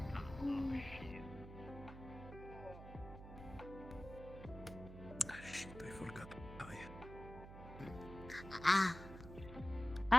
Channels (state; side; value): noise; right; hum, 13 dB below the sound